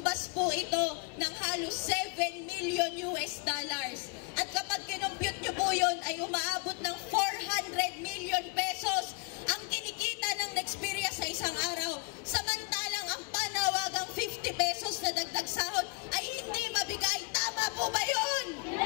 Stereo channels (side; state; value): right; quieter; 28.6 dB